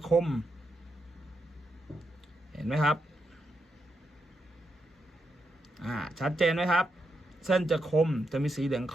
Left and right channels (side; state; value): both; normal; correlation 0.83